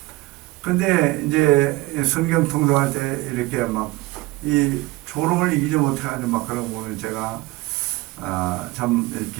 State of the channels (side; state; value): left; quieter; 20.3 dB